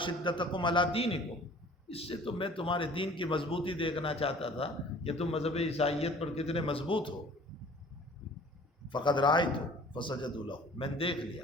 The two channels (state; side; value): normal; both; correlation 0.49